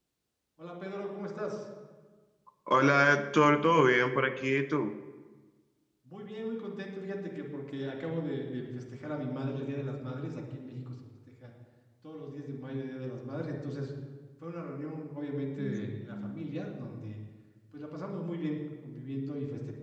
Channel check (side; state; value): both; identical; correlation 1.00